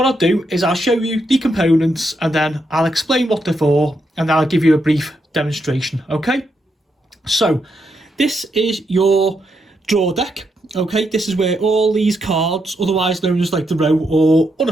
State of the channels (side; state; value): both; normal; correlation 0.81